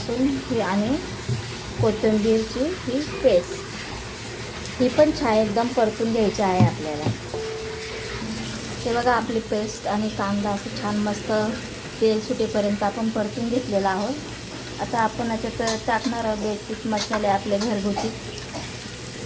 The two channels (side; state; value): both; identical; correlation 1.00